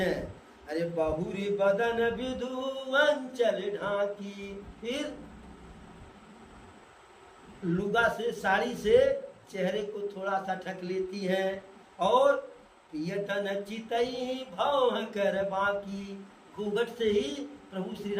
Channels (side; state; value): both; identical; correlation 1.00